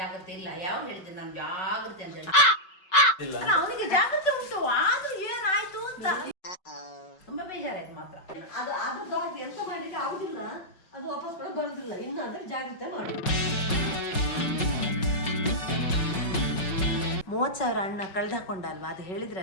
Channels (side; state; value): right; late; 5.3 ms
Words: ಇಲ್ಲ. ಯಾವ ಹೇಳಿದ್ರೆ ನಾನು ಜಾಗ್ರತೆ ಅಂತ ಹೇಳಿ. ಅಲ್ಲ, ಅವನಿಗೆ ಜಾಗ್ರತೆ ಉಂಟು, ಆದ್ರೂ ಏನಾಯ್ತು ಅಂತ ತುಂಬಾ ಬೇಜಾರಾಯ್ತು ಮಾತ್ರ. ಅದು ಅದ್ರದ್ದು ಎಂತ ಮಾಡ್ಲಿಕ್ಕೆ ಆಗುದಿಲ್ಲ, ಅದು ವಾಪಸ್ ಕೂಡ ಬರುದಿಲ್ಲ. ಇನ್ನಾದ್ರೆ ಜಾಗ್ರತೆ ಮಾಡಿ. 30,000 ಅಣ್ಣ ಕಳ್ದಾಕೊಂಡ ಅಲ್ವಾ, ಅದು ಹೇಳಿದ್ರ